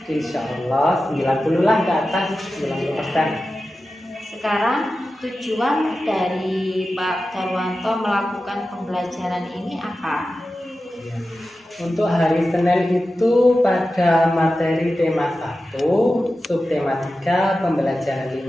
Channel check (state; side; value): normal; both; correlation 0.93